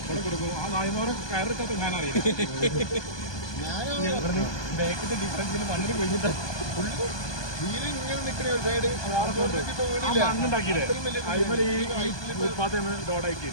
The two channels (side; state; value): right; late; 1.2 ms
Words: ഇവിടെ കൊടുക്കും. ആ നായ്മോരെ കയറിട്ടൊക്കെ ഞാൻ അറിയാം. ബാക്കിന്റെ ഡിഫറൻസിന് മണ്ണിന് പോയിട്ട് മണ്ണുണ്ടാക്കിയില്ലേ അതുപോലെ ഈ ഫുട്പാത്ത് ഡോഡാക്കി.